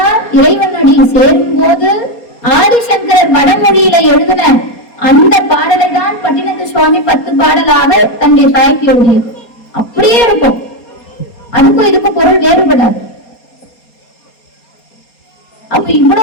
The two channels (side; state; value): right; late; 4.2 ms